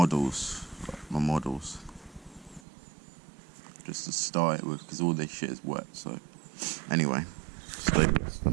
models, just to start it with, because all this shit is wet. So anyway, stay with us for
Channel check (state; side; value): drops out; left; at 2.6 s